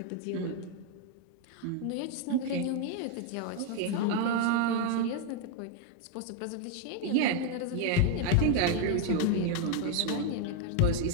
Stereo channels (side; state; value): both; different; correlation 0.01